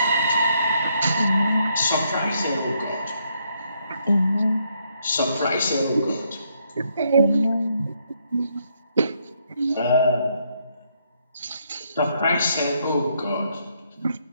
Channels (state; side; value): inverted; both; correlation -0.74